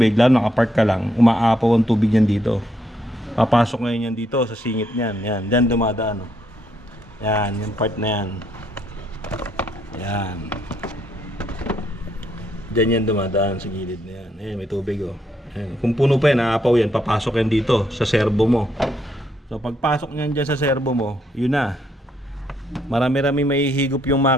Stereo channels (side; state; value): both; normal; correlation 0.74